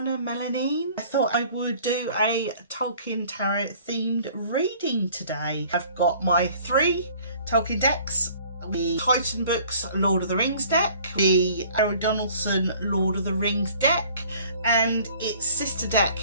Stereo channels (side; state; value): both; inverted; correlation -0.53